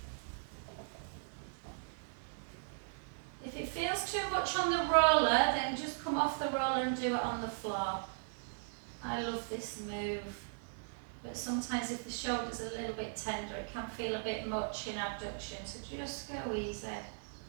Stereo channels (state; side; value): silent; left; 52 dB below the other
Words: If it feels too much on the roller, then just come off the roller and do it on the floor. I love this move. But sometimes if the shoulder's a little bit tender, it can feel a bit much in abduction. So just go easy.